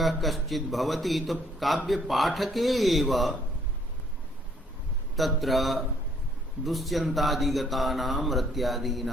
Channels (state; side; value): normal; both; correlation 0.64